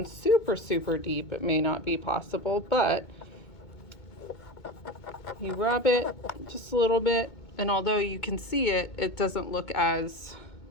super deep, it may not be possible, but you rub it just a little bit, and although you can see it, it doesn't look as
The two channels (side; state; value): right; late; 2.2 ms